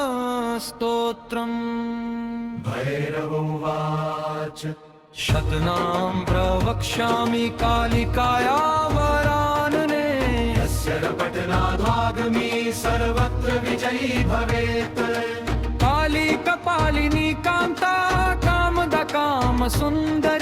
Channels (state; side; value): identical; both; correlation 1.00